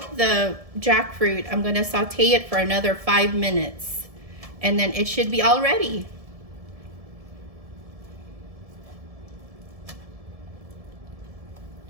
the jackfruit, I'm gonna saute it for another 5 minutes. And then it should be all ready.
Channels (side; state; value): left; late; 1.7 ms